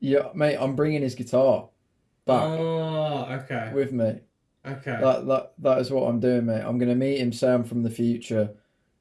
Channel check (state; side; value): identical; both; correlation 1.00